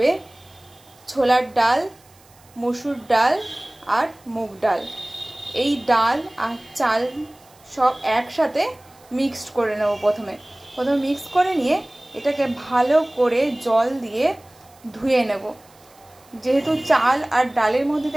ছোলার ডাল, মসুর ডাল আর মুগ ডাল। এই ডাল আর চাল সব একসাথে মিক্সড করে নেব। প্রথমে মিক্স করে নিয়ে এটাকে ভালো করে জল দিয়ে ধুয়ে নেব। যেহেতু চাল আর ডালের মধ্যে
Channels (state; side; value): noise; right; hiss, 28 dB below the sound